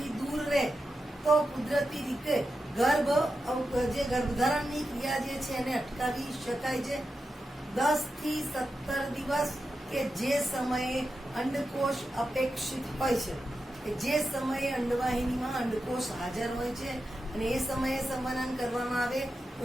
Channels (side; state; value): both; normal; correlation 0.90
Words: દૂર રહે તો કુદરતી રીતે ગર્ભધારણની ક્રિયા જે છે એને અટકાવી શકાય છે. 10 થી 17 દિવસ કે જે સમયે અંડકોષ અપેક્ષિત હોય છે, જે સમયે અંડવાહિનીમાં અંડકોષ હાજર હોય છે અને એ સમયે સંવનન કરવામાં આવે તો